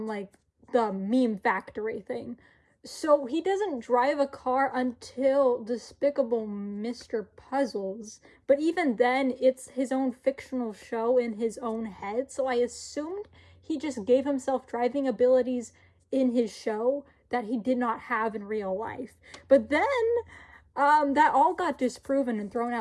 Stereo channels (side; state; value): both; identical; correlation 1.00